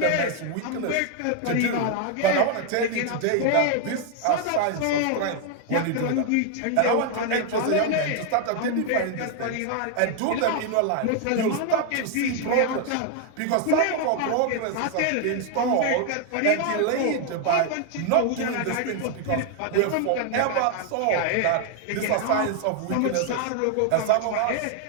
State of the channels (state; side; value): different; both; correlation 0.00